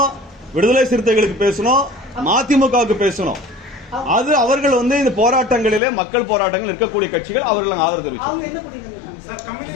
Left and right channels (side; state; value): right; drops out; at 5.8 s